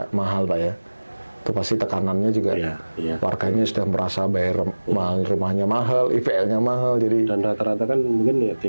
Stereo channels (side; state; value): both; inverted; correlation -1.00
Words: mahal Pak ya. Itu pasti tekanannya juga warganya sudah merasa bayar mahal, rumahnya mahal, IPL-nya mahal, jadi dan rata-rata kan mungkin ya